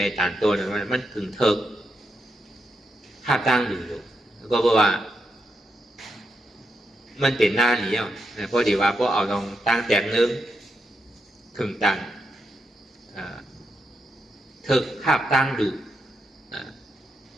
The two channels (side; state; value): both; normal; correlation 0.83